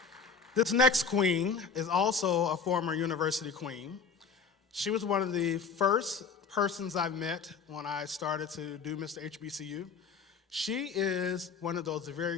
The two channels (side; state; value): right; quieter; 5.5 dB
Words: This next queen is also a former university queen. She was one of the first persons I met when I started to do Mr. HBCU. She is one of those